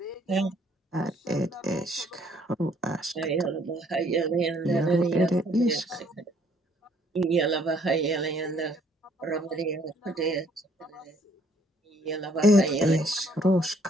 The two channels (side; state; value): both; normal; correlation 0.63